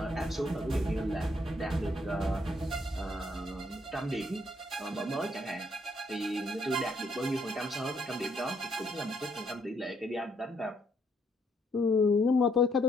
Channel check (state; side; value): normal; both; correlation 0.71